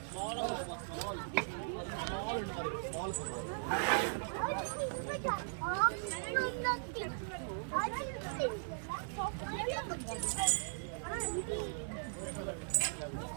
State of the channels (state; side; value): silent; left; digital silence